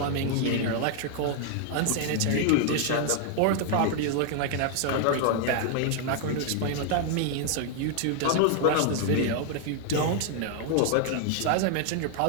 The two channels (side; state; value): both; different; correlation 0.00